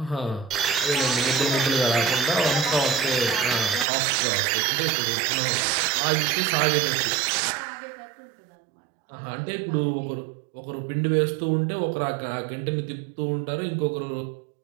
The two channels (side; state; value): left; drops out; at 3.9 s